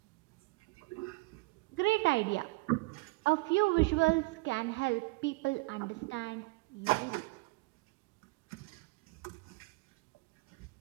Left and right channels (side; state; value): left; quieter; 24.5 dB